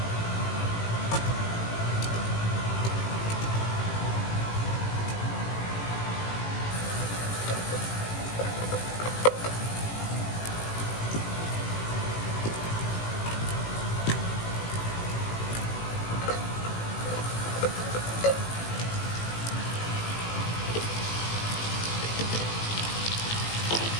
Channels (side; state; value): right; late; 18 ms